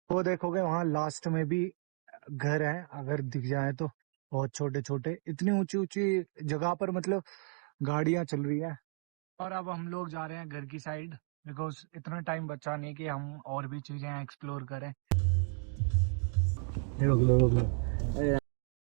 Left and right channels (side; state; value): left; quieter; 37.3 dB